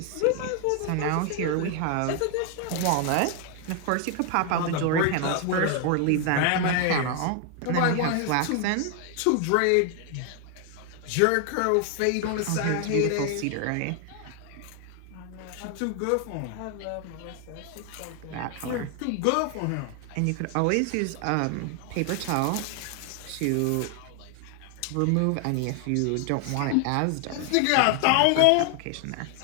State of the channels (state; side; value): different; both; correlation 0.00